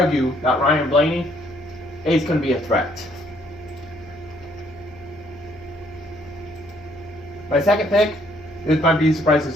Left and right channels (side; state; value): both; normal; correlation 0.67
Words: that Ryan Blaney is going to be a threat. My second pick, this might be a surprise to